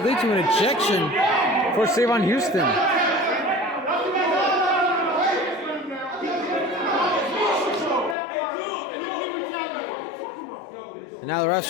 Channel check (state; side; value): drops out; right; at 8.2 s